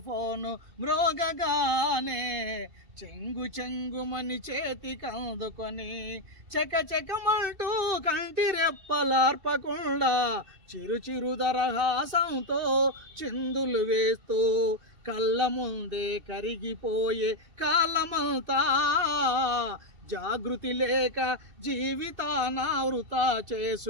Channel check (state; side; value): late; left; 2.7 ms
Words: ఫోను మ్రోగగానే, చెంగు చెంగుమని చేతికందుకొని చెక చెకమంటూ కంటి రెప్పలార్పకుండా చిరు చిరు దరహాసంతో చిందులు వేస్తూ కళ్ళ ముందే కరిగిపోయే కాలమంతా జాగృతి లేక జీవితాన వృతా